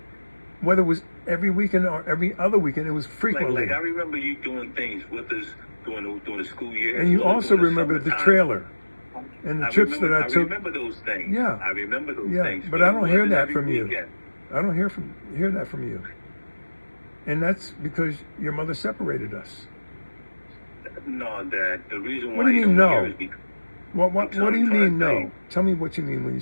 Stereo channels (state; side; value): inverted; both; correlation -1.00